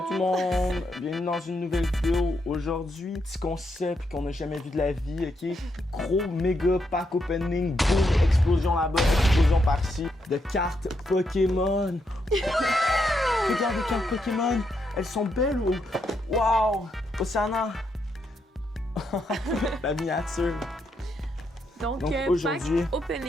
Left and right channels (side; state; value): both; normal; correlation 0.80